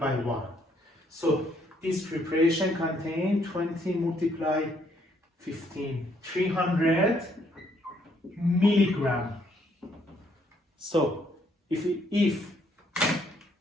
1. So this preparation contains 20 multiplied 15, 300 milligram. So if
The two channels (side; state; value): both; normal; correlation 0.69